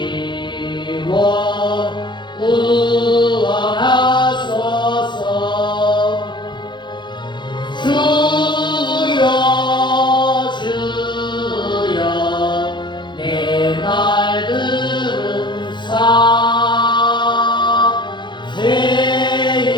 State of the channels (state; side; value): late; right; 0.22 ms